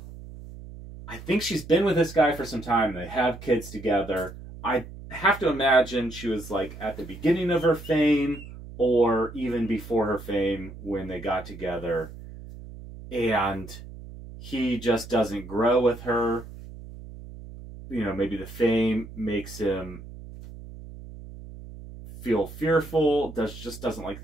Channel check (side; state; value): right; noise; hum, 14 dB below the sound